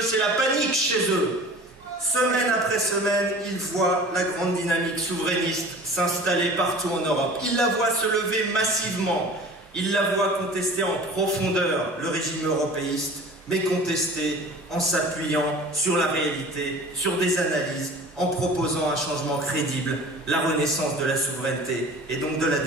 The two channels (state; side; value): normal; both; correlation 0.42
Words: c'est la panique chez eux. Semaine après semaine, ils voient la grande dynamique souverainiste s'installer partout en Europe. Ils la voient se lever massivement. Ils la voient contester en profondeur le régime européiste, mais contester en s'appuyant sur la réalité, sur des analyses, en proposant un changement crédible, la renaissance de la souveraineté et donc de la